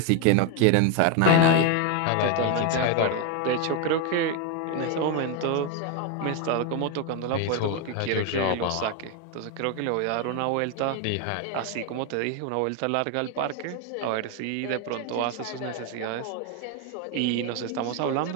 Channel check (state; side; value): different; both; correlation 0.01